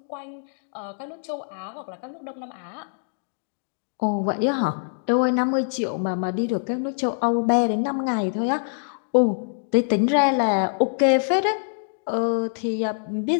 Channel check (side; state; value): right; silent; digital silence